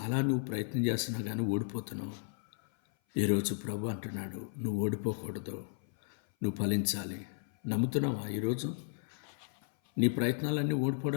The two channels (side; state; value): right; silent; 55 dB below the other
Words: నువ్వు ప్రయత్నం చేస్తున్నా కానీ ఓడిపోతున్నావు. ఈరోజు ప్రభు అంటున్నాడు, నువ్వు ఓడిపోకూడదు, నువ్వు ఫలించాలి. నమ్ముతున్నావా? ఈరోజు నీ ప్రయత్నాలన్నీ